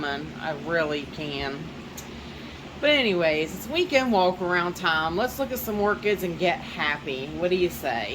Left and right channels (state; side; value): identical; both; correlation 1.00